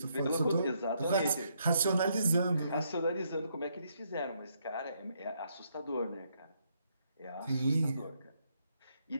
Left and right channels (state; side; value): inverted; both; correlation -0.75